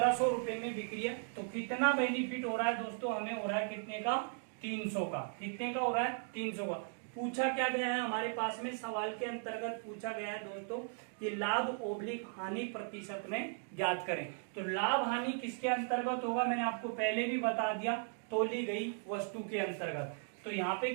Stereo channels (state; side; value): silent; left; 53 dB below the other